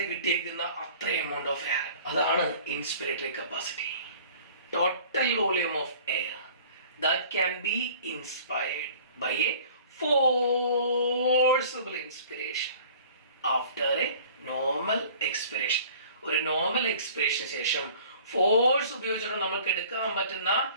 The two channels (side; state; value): both; inverted; correlation -0.48